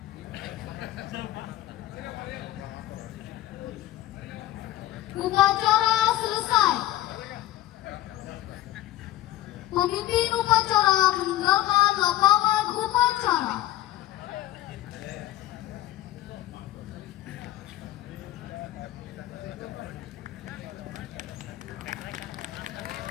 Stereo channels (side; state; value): right; quieter; 14.7 dB